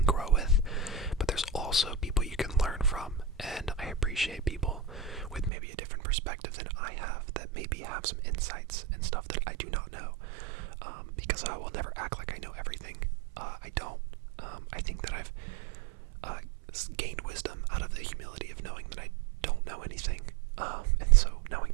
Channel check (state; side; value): drops out; left; at 5.5 s